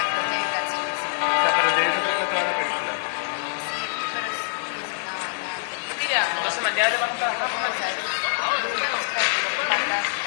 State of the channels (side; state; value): right; silent; 57 dB below the other